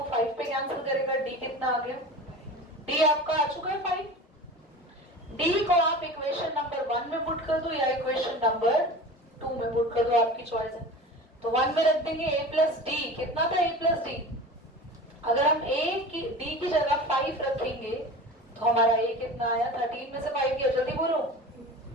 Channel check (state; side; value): normal; both; correlation 0.35